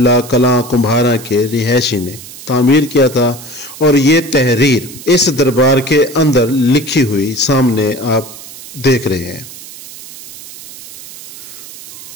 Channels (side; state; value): right; noise; hiss, 15 dB below the sound